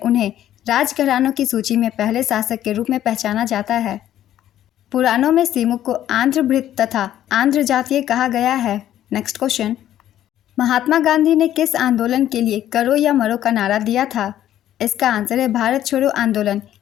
राजघरानों की सूची में पहले शासक के रूप में पहचाना जाता है। पुराणों में सिमुक को आंध्रभृत तथा आंध्र जातीय कहा गया है। नेक्स्ट क्वेश्चन, महात्मा गांधी ने किस आंदोलन के लिए करो या मरो का नारा दिया था? इसका आंसर है भारत छोड़ो आंदोलन।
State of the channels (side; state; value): right; quieter; 12.0 dB